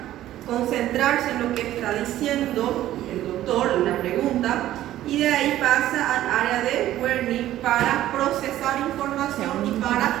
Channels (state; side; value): quieter; left; 13.6 dB